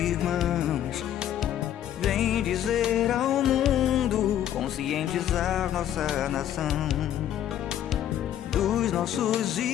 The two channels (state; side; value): quieter; right; 11.1 dB